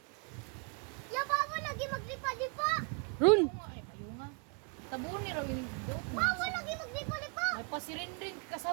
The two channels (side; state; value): left; quieter; 35.7 dB